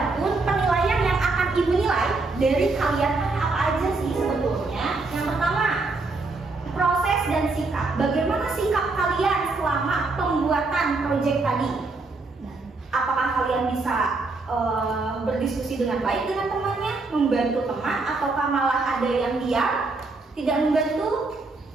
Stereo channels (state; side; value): quieter; left; 3.6 dB